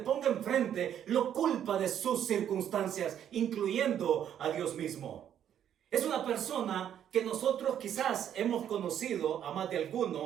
enfrente, lo culpa de sus circunstancias, incluyendo a Dios mismo. Es una persona que nosotros quizás hemos conocido a más de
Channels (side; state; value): left; quieter; 9.8 dB